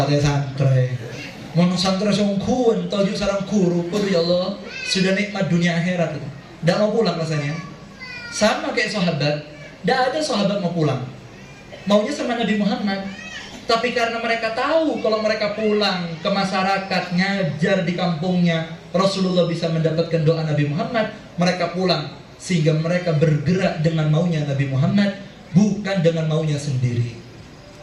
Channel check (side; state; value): both; identical; correlation 1.00